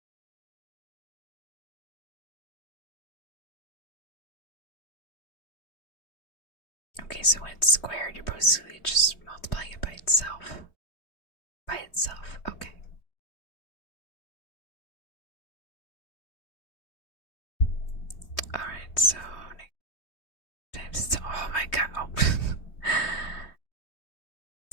Okay, so when it's squared, you're basically just multiplying it by itself. By itself, okay. Alright, so times, oh my god, oh.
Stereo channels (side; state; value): right; late; 3.2 ms